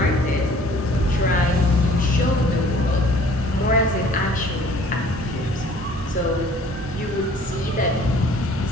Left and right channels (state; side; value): normal; both; correlation 0.53